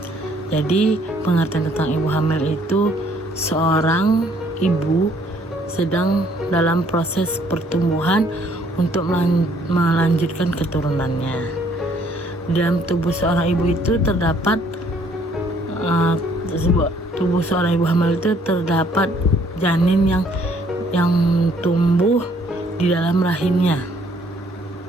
Jadi pengertian tentang ibu hamil itu seorang ibu sedang dalam proses pertumbuhan untuk melanjutkan keturunannya. Dalam tubuh seorang ibu itu terdapat tubuh seorang ibu hamil itu terdapat janin yang tumbuh di dalam rahimnya.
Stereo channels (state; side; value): normal; both; correlation 0.63